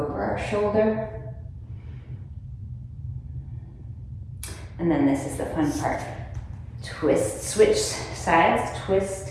our shoulder. And then this is the fun part. Twist, switch sides, twist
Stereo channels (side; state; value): both; identical; correlation 1.00